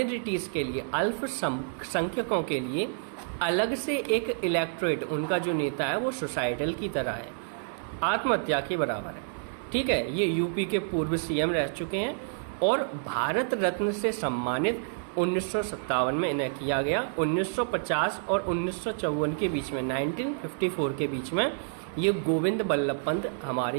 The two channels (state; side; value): silent; left; digital silence